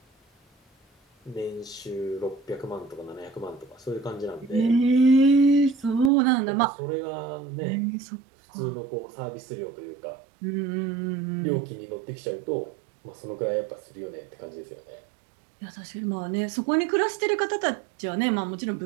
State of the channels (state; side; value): drops out; left; at 6.1 s